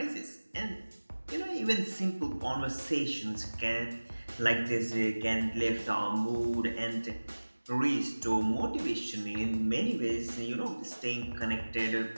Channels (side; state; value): both; inverted; correlation -1.00